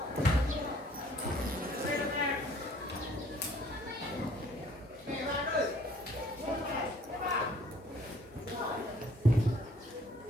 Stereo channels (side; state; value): both; normal; correlation 0.58